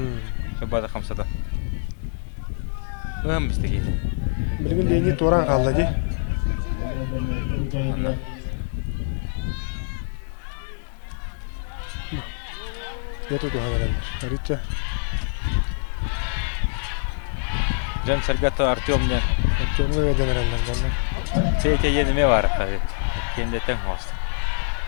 Шабада хамсада. Бистеге. Билген дени туран калды ди. Яту хәнәләр. Рича. Жан Саргата Артемне. Артемга хәнәләр. Петя ене бар хәзер. Кенде тәң хаст.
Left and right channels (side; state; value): right; silent; digital silence